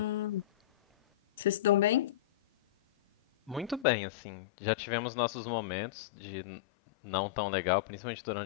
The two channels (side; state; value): right; drops out; at 3.9 s